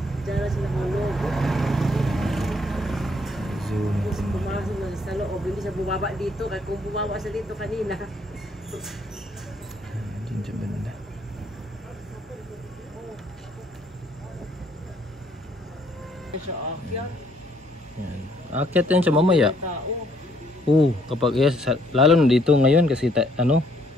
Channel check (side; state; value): both; normal; correlation 0.67